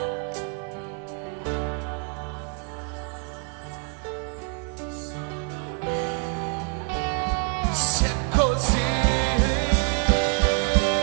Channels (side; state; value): left; quieter; 37.2 dB